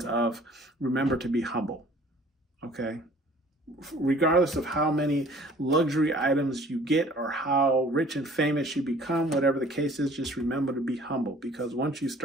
of remember to be humble. Okay, regardless of how many luxury items you get or how rich and famous you become, whatever the case is, just remember to be humble, because once you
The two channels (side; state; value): both; normal; correlation 0.52